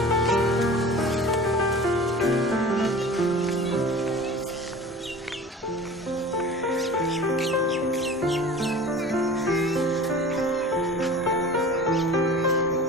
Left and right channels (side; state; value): both; normal; correlation 0.39